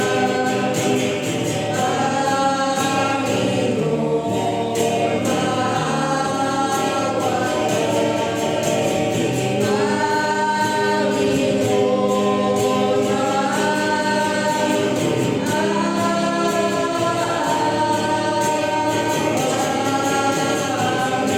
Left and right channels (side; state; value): both; identical; correlation 1.00